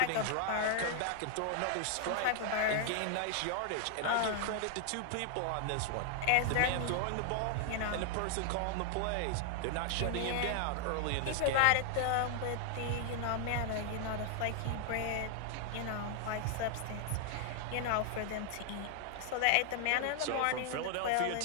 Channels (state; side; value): different; both; correlation 0.00